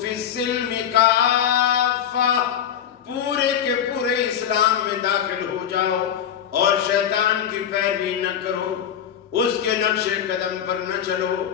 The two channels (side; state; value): right; quieter; 9.4 dB